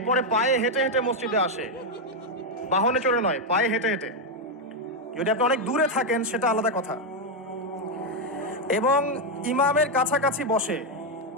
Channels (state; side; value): normal; both; correlation 0.02